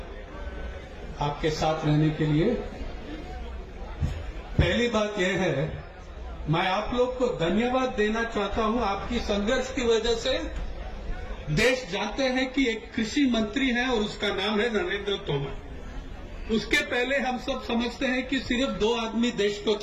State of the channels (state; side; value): identical; both; correlation 1.00